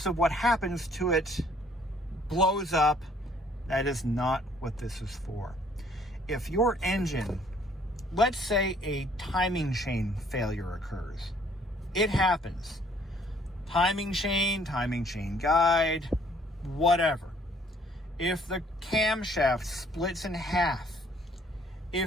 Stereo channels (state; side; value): normal; both; correlation 0.61